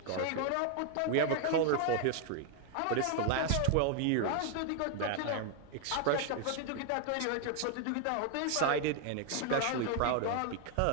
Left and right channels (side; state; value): both; different; correlation 0.01